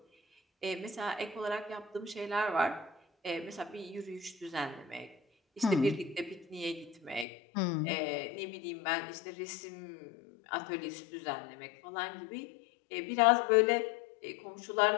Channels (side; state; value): right; drops out; at 7.2 s